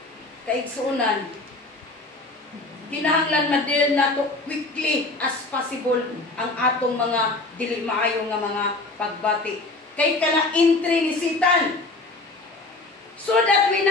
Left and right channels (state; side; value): quieter; right; 3.0 dB